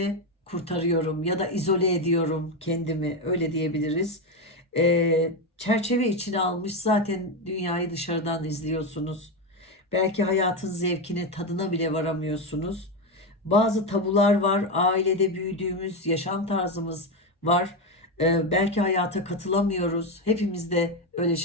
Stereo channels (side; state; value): both; normal; correlation 0.11